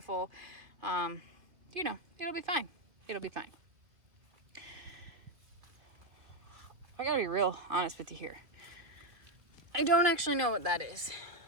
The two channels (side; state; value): left; late; 2.3 ms